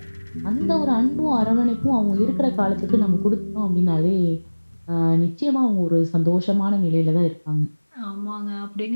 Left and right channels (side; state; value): both; inverted; correlation -1.00